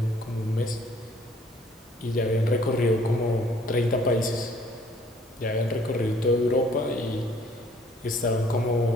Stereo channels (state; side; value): normal; both; correlation 0.59